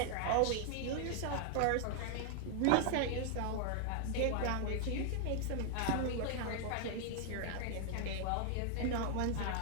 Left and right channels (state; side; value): different; both; correlation 0.00